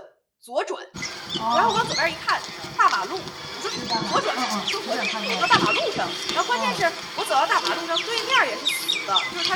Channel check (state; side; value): identical; both; correlation 1.00